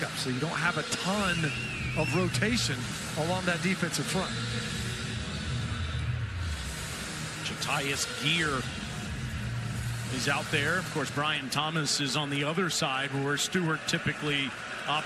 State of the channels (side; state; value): both; identical; correlation 1.00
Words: so you don't have a ton of rotation along that defensive front. Jatius Geer is out there. Of course, Brian Thomas is on the other side where Stewart typically